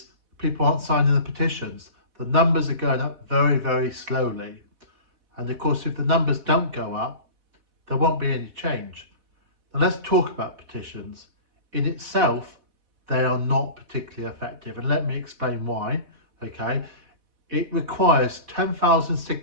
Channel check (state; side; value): late; left; 4.1 ms